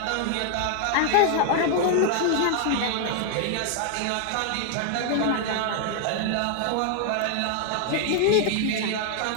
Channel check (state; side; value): different; both; correlation 0.00